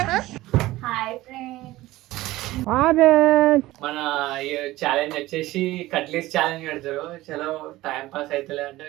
మన ఛాలెంజ్ వచ్చేసి కట్లీస్ ఛాలెంజ్ పెడతారు. చలో టైం పాస్ అవుతలే అంటే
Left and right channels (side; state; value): left; quieter; 17.4 dB